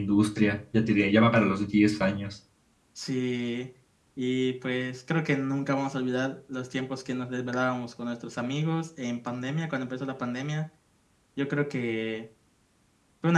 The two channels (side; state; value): both; identical; correlation 1.00